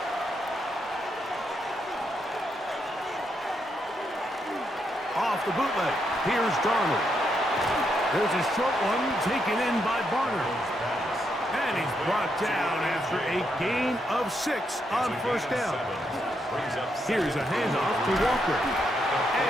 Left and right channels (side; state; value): both; normal; correlation 0.79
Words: Off the bootleg, here's Darnold. There's a short one taken in by Barner. And he's brought down after a gain of 6 on 1st down. Here's a handoff to Walker.